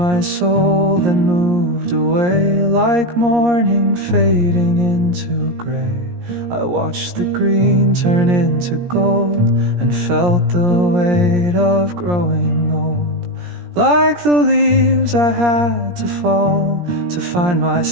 soul, then moved away like morning fading into gray. I watched the green turn into gold and felt the weight of growing old. Like the leaves I had to fall to find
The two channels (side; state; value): left; late; 17 ms